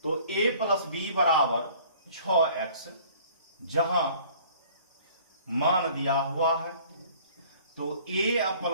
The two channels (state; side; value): inverted; both; correlation -0.52